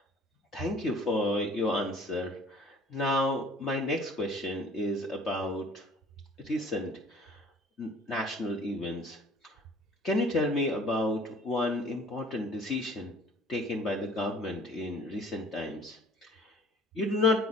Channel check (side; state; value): both; normal; correlation 0.51